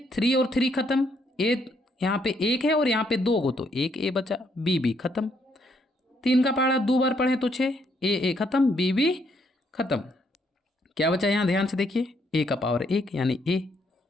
3 और 3 खत्म, ए यहाँ पे 1 है और यहाँ पे 2 को, तो 1 a बचा, b भी खत्म। 3 का पहाड़ा 2 बार पढ़े तो 6, a खत्म, b भी खत्म। क्या बचा यहाँ ध्यान से देखिए, a का पावर 1 यानी a,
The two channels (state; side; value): normal; both; correlation 0.72